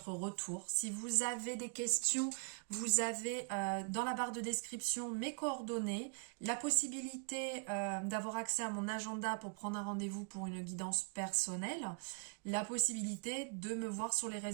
retour. Si vous avez des questions, vous avez dans la barre de description mes coordonnées, la possibilité d'avoir accès à mon agenda pour prendre un rendez-vous pour une guidance personnelle, la possibilité de me voir sur les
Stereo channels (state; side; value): quieter; left; 37.8 dB